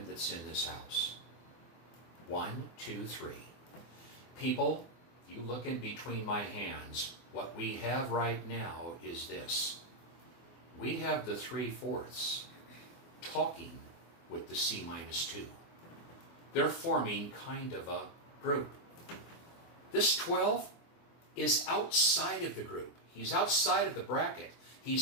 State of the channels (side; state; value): right; late; 24 ms